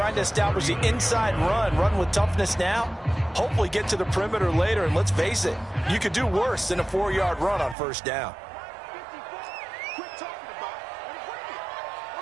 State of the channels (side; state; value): left; drops out; at 7.8 s